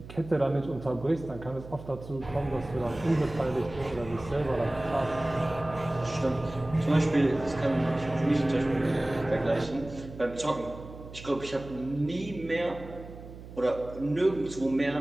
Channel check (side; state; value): right; noise; hum, 15 dB below the sound